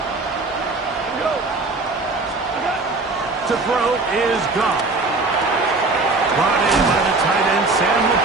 To throw is Goff. Brought in by the tight end, Sam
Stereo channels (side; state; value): left; quieter; 3.5 dB